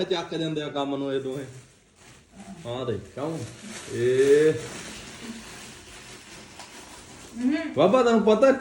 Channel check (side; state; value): both; identical; correlation 1.00